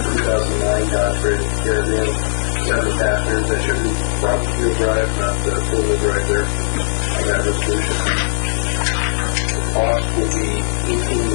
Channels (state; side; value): silent; right; digital silence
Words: Dodge Ram Caravan, 7 passengers. That should be front wheel drive, not four-wheel drive there on that resolution. The cost will be